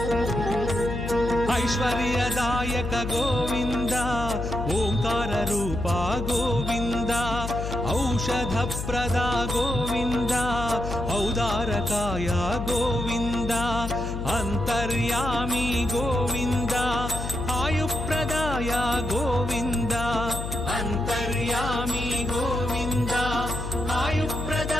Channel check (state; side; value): noise; left; hum, 5 dB below the sound